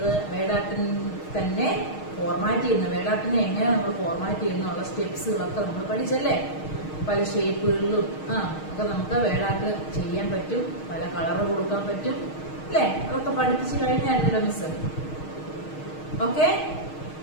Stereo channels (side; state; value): right; late; 6.4 ms